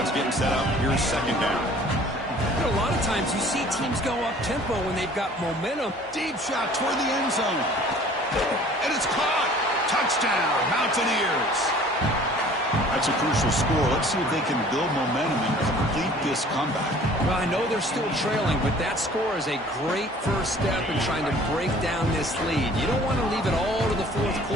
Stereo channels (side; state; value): both; normal; correlation 0.50